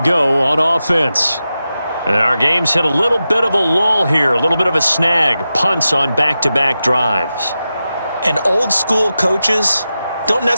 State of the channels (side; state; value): both; inverted; correlation -0.91